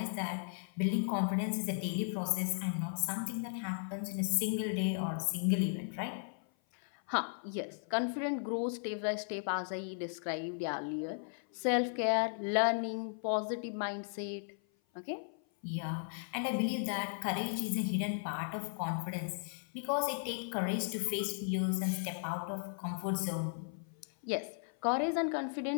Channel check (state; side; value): silent; right; 54 dB below the other